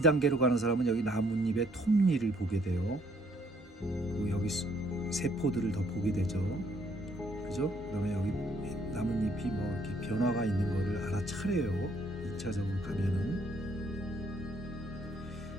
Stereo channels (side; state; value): both; normal; correlation 0.66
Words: 가는 사람은 여기 나뭇잎의 톱니를 보게 돼요. 그리고 여기 세포들을 더 보게 되죠. 그죠? 그다음에 여기 나뭇잎이 뭐 이렇게 변화가 있는 거를 알아차려요. 2차적으로 가면은.